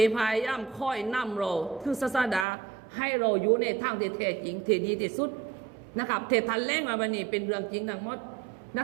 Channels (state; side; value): drops out; left; at 2.5 s